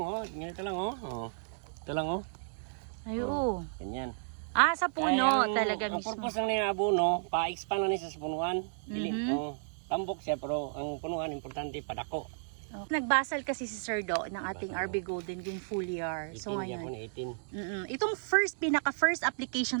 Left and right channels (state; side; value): silent; left; digital silence